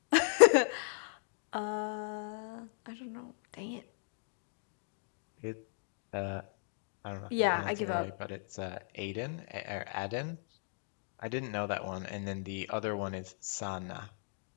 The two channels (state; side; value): silent; right; digital silence